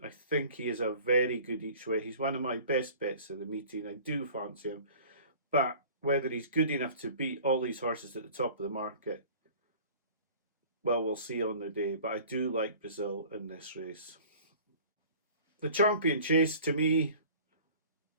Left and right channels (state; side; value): inverted; both; correlation -0.45